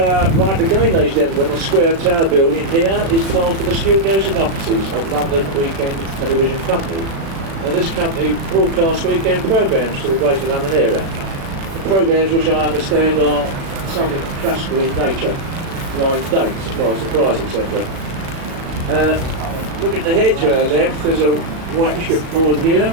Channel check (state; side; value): late; left; 36 ms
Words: right again, ladies and gentlemen, the square tower building here is part of the studios and offices of London Weekend Television Company. Now this company broadcasts weekend programmes to the Greater London area. The programmes, which I understand are something classical in nature, blind dates, surprise, etc. Looking ahead to our left, there's a white shipboard here,